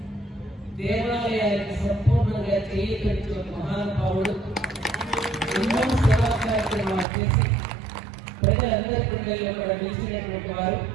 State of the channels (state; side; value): drops out; left; at 7.1 s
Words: దేవాలయానికి సంపూర్ణంగా చేయించిన మహానుభావుడు, ఎన్నో సేవా కార్యక్రమాలు చేసి ప్రజలందరి గుండెల్లో కూడా నిలిచినటువంటి వారు.